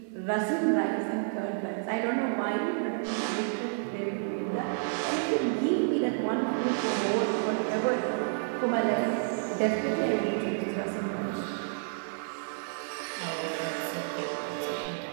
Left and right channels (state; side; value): silent; left; digital silence